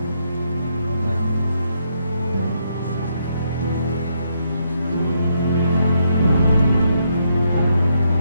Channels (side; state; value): both; inverted; correlation -0.76